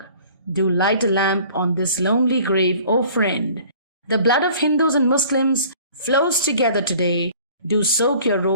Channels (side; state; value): both; inverted; correlation -0.50